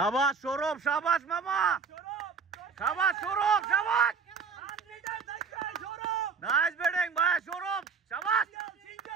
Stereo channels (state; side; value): quieter; left; 5.4 dB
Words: সৌরভ শাবাশ মামা শাবাশ সৌরভ শাবাশ নাইস ব্যাটিং ভাই সৌরভ শাবাশ